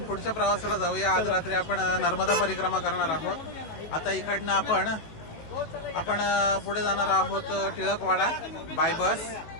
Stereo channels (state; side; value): late; right; 18 ms